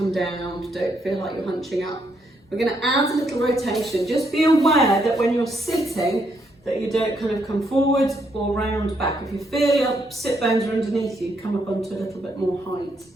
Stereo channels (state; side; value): normal; both; correlation 0.75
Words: down. Don't feel like you're hunching up. We're going to add a little rotation. Just be aware that when you're sitting, that you don't kind of come forward or round back. If you feel your sit bones are underneath you, come up onto a little bit more height.